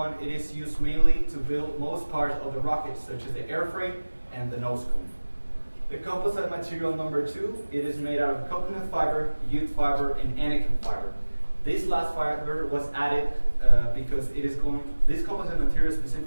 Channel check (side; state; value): both; inverted; correlation -1.00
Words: it is used mainly to build most parts of the rocket, such as the airframe and the nose cone. The composite material number two, it is made out of coconut fiber, jute fiber, and anakin fiber. This last fiber was added because this composite material